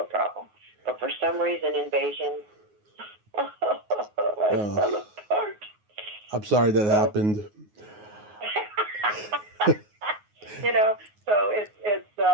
problem. But for some reason, Invasion, I fell apart. I'm sorry that happened. So it's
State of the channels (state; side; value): late; left; 9.5 ms